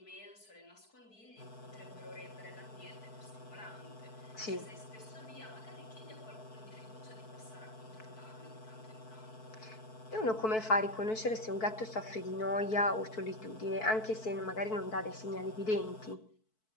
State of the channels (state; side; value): late; right; 4.6 ms